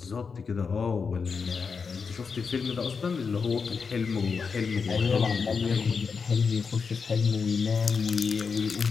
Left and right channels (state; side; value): quieter; right; 5.4 dB